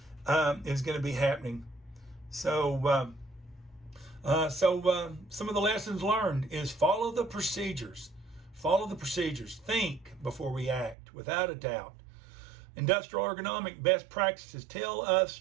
is going to be happening. So some of the lessons learned is follow the procedures. Follow the procedures. Think before we act, without a doubt. Industrial ergonomic best practices tell us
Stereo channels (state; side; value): drops out; left; at 11.0 s